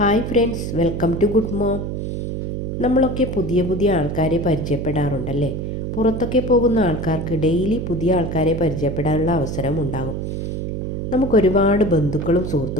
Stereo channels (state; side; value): noise; right; hum, 4 dB below the sound